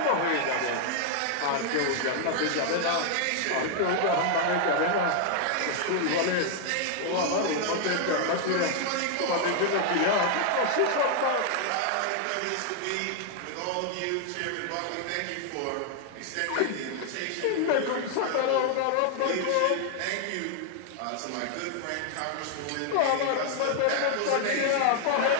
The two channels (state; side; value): different; both; correlation 0.00